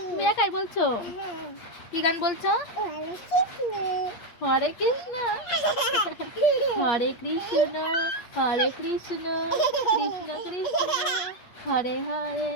তুমি একাই বলছো? কি গান বলছো? হরে কৃষ্ণ, হরে কৃষ্ণ, হরে কৃষ্ণ, কৃষ্ণ কৃষ্ণ, হরে হরে।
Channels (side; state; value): right; late; 8.4 ms